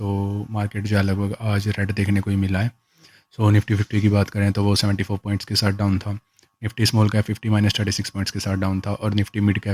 मार्केट जो है लगभग आज रेड देखने को ही मिला है। निफ्टी 50 की बात करें तो वो 74 पॉइंट्स के साथ डाउन था। निफ्टी स्मॉल कैप 50 -36 पॉइंट्स के साथ डाउन था और निफ्टी मिड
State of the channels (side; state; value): both; identical; correlation 1.00